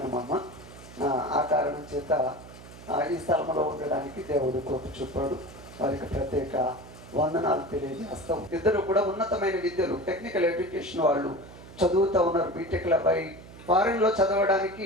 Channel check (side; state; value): right; noise; hum, 17 dB below the sound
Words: ఆ కారణం చేత ఈ స్థలంలో ఉండడానికి దేవుడు కృప చూపాడు. వారికి ప్రత్యేక వందనాలు తెలియజేస్తాం. ఇద్దరు కూడా ఉన్నతమైన విద్యలు, టెక్నికల్ ఎడ్యుకేషన్ వాళ్ళు చదువుతూ ఉన్నారు. బీటెక్ల పై ఫారెన్లో చదవడానికి